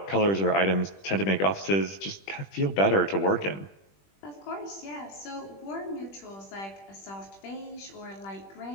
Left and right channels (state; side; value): late; right; 20 ms